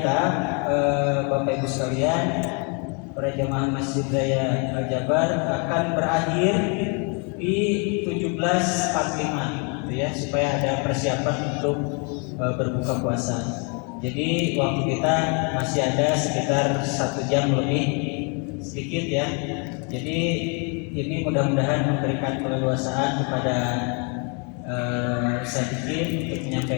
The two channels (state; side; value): quieter; right; 35.6 dB